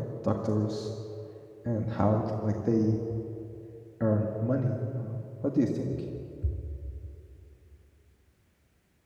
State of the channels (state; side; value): identical; both; correlation 1.00